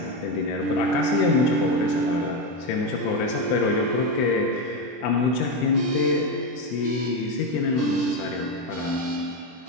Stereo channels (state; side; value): late; right; 24 ms